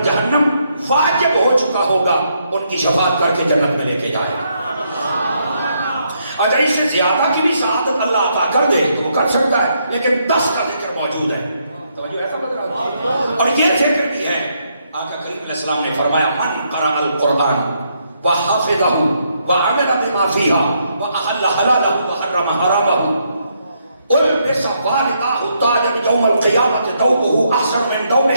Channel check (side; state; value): both; inverted; correlation -0.76